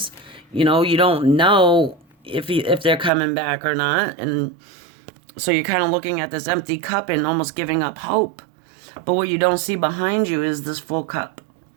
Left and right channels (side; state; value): left; drops out; at 3.1 s